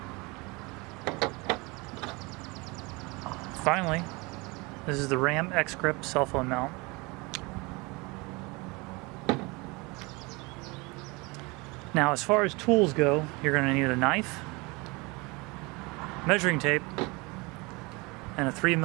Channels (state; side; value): quieter; left; 26.0 dB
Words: Finally, this is the Ram X-Grip cell phone mount. Now, as far as tools go, you're going to need a knife, measuring tape, and a